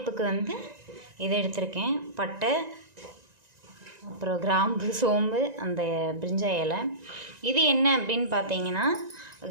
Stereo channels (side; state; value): left; late; 1.9 ms